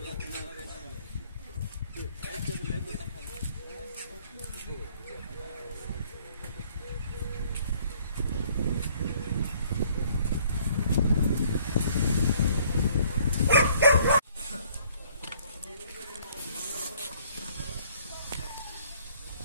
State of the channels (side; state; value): both; inverted; correlation -0.60